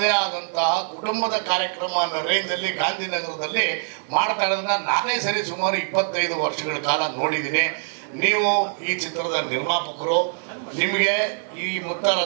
ಆದಂತಹ ಕುಟುಂಬದ ಕಾರ್ಯಕ್ರಮ ಅನ್ನೋ ರೇಂಜಲ್ಲಿ ಗಾಂಧಿನಗರದಲ್ಲಿ ಮಾಡ್ತಾ ಇರೋದನ್ನ ನಾನೇ ಸರಿ ಸುಮಾರು 25 ವರ್ಷಗಳ ಕಾಲ ನೋಡಿದ್ದೀನಿ. ನೀವು ಈ ಚಿತ್ರದ ನಿರ್ಮಾಪಕರು. ನಿಮಗೆ ಈ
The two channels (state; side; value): silent; left; 63 dB below the other